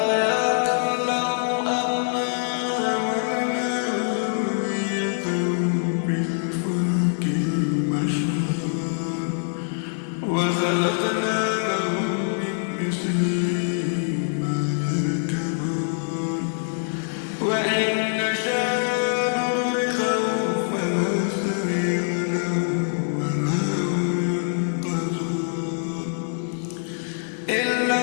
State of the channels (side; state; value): right; silent; digital silence